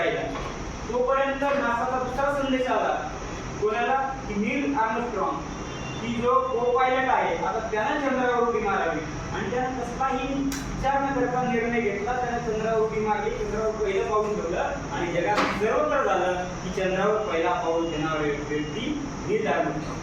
तोपर्यंत नासाचा दुसरा संदेश आला कोणाला, की नील आर्मस्ट्रॉंग, की जो को पायलट आहे आता त्यानं चंद्रावर उडी मारावी, आणि त्यानं कसलाही विचार न करता निर्णय घेतला. त्यानं चंद्रावर उडी मारली, चंद्रावर पहिलं पाऊल ठेवलं आणि जगात सर्वत्र झालं की चंद्रावर पहिला पाऊल देणारी व्यक्ती नील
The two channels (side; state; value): both; identical; correlation 1.00